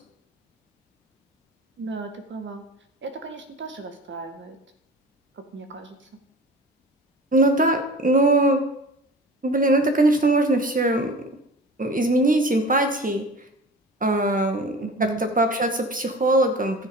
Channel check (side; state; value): both; normal; correlation 0.38